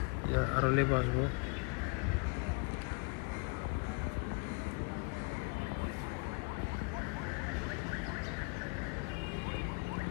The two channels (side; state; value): right; quieter; 34.3 dB